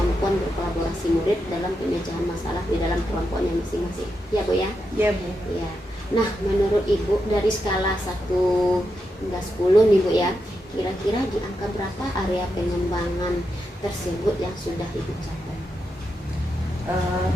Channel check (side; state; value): both; normal; correlation 0.85